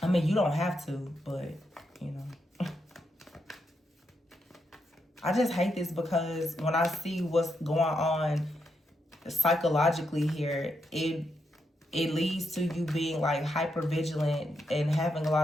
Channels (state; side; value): normal; both; correlation 0.82